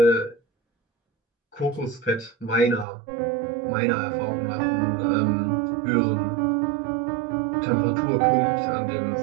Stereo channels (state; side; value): drops out; left; at 2.9 s